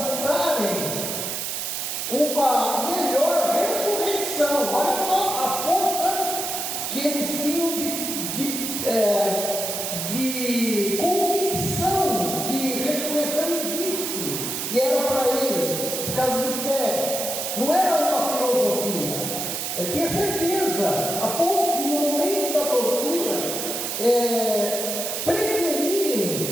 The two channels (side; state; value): right; noise; hiss, 3 dB below the sound